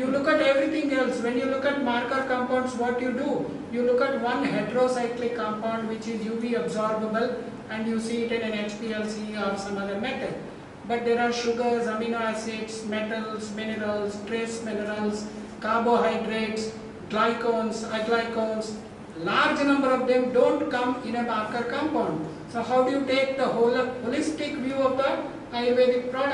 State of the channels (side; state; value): both; identical; correlation 1.00